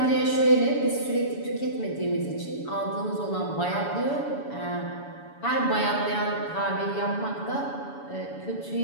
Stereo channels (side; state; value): right; late; 7.0 ms